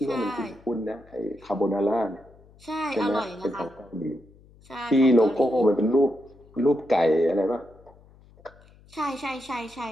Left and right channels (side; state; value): left; noise; hum, 26 dB below the sound